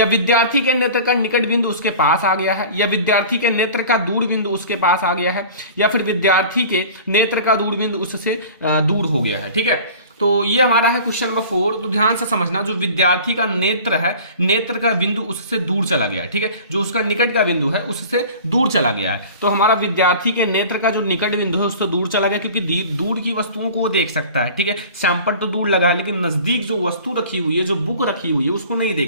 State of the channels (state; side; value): inverted; both; correlation -0.42